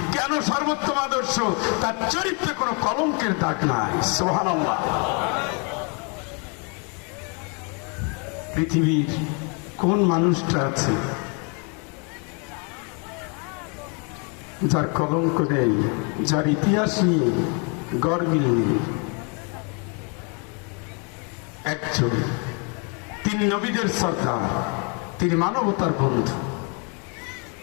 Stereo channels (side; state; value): right; quieter; 35.6 dB